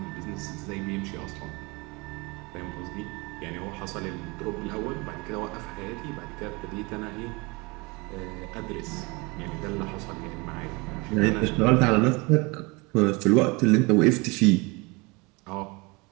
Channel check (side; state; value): left; quieter; 26.7 dB